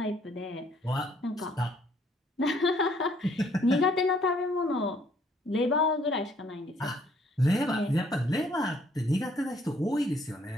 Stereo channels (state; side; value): normal; both; correlation 0.65